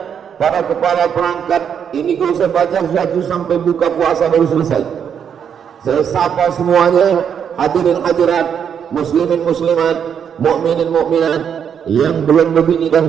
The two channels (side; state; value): left; quieter; 7.9 dB